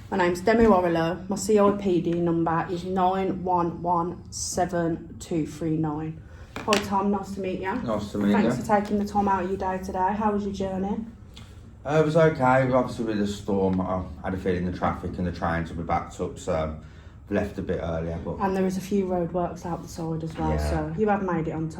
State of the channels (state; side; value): identical; both; correlation 1.00